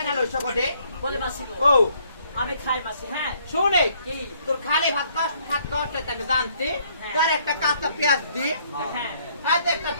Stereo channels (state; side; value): inverted; both; correlation -0.66